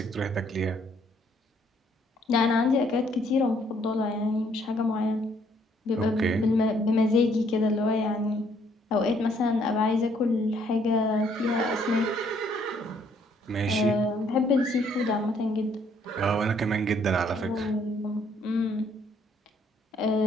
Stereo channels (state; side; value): normal; both; correlation 0.66